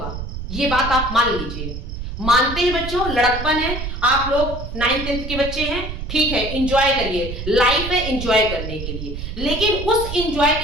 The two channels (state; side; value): noise; right; rumble, 7 dB below the sound